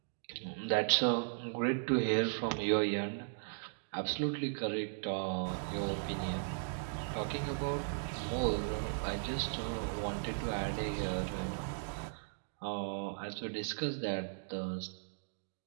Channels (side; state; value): left; silent; digital silence